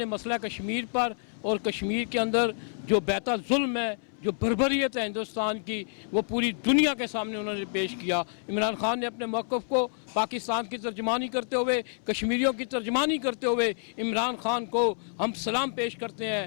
مسئلہ کشمیر پر اور کشمیر کے اندر جو بیتا ظلم ہے، جو بربریت ہے ہندوستان کی، وہ پوری دنیا کے سامنے انہوں نے پیش کیا۔ عمران خان نے اپنے موقف کو پاکستان کی ترجمانی کرتے ہوئے، کشمیریوں کی ترجمانی کرتے ہوئے عمران خان کو ہم سلام پیش کرتے ہیں۔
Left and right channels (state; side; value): silent; right; 59 dB below the other